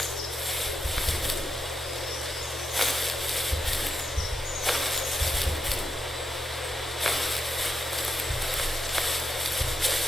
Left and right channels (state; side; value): normal; both; correlation 0.85